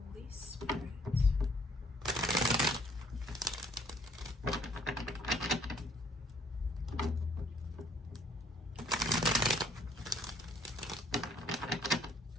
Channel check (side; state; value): both; normal; correlation 0.62